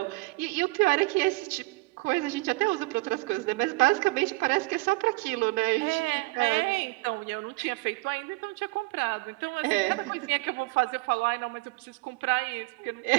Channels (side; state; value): left; quieter; 24.5 dB